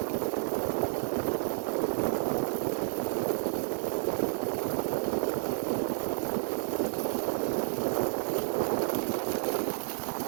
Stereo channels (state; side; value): silent; left; digital silence